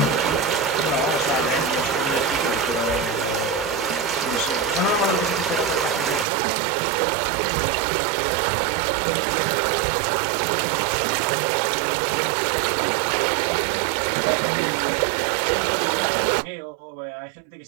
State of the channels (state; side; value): drops out; left; at 6.2 s